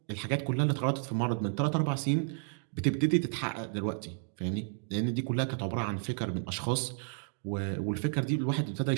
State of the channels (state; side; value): silent; left; 56 dB below the other